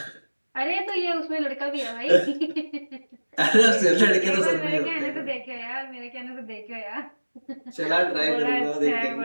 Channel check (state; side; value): inverted; both; correlation -1.00